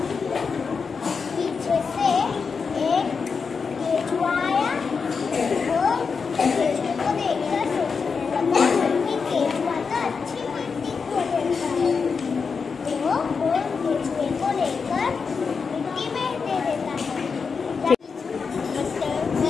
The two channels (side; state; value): right; quieter; 5.4 dB